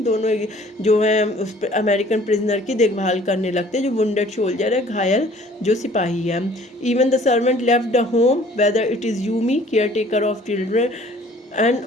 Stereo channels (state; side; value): normal; both; correlation 0.54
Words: दोनों जो है उस अमेरिकन प्रिजनर की देखभाल करने लगते हैं, जो वुंडेड सोल्जर है, घायल जो सिपाही है। Even the servant left the home whether it is Yumi, care taker of children and